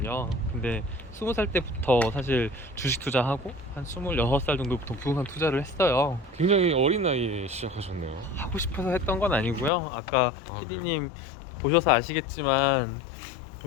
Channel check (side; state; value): right; drops out; at 9.7 s